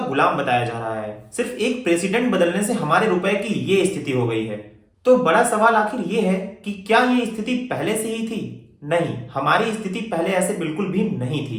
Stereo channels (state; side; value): identical; both; correlation 1.00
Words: बताया जा रहा है। सिर्फ एक प्रेसिडेंट बदलने से हमारे रुपए की ये स्थिति हो गई है। तो बड़ा सवाल आखिर ये है कि क्या ये स्थिति पहले से ही थी? नहीं, हमारी स्थिति पहले ऐसे बिल्कुल भी नहीं